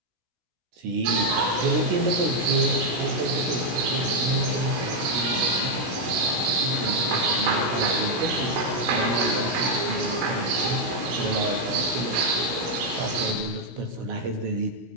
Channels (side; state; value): left; late; 16 ms